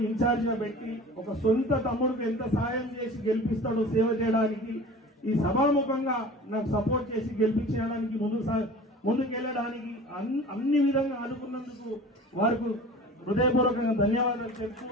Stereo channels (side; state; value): both; normal; correlation 0.40